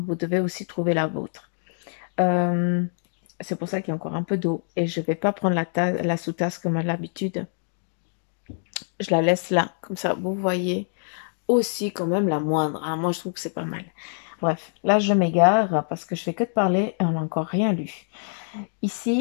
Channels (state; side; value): silent; right; digital silence